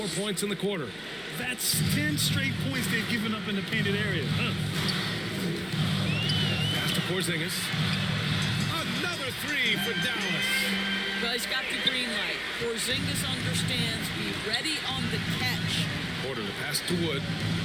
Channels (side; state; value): left; noise; hum, 27 dB below the sound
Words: points in the quarter. That's 10 straight points they've given up in the painted area. Pass to Porzingis. Another 3 for Dallas. Well, he's got the green light. Porzingis understands. Be ready on the catch. Porter to pass to Wood.